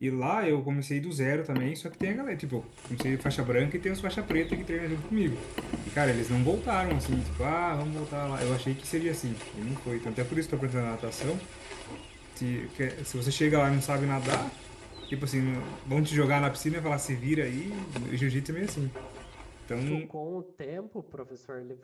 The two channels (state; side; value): identical; both; correlation 1.00